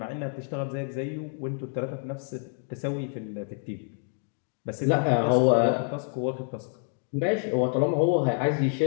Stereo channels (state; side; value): silent; right; 59 dB below the other